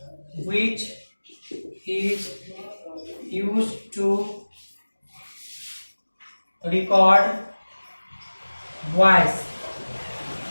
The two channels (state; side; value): inverted; both; correlation -1.00